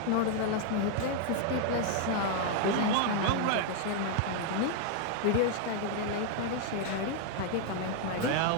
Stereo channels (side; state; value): both; different; correlation 0.00